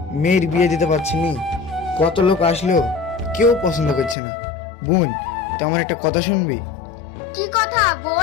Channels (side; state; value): right; drops out; at 4.2 s